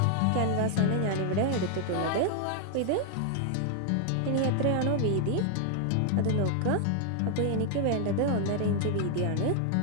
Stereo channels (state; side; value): different; both; correlation 0.00